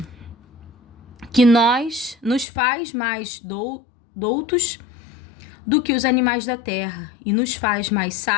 Que nos faz mais doutos do que os animais da terra, e nos faz mais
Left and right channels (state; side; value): drops out; right; at 2.5 s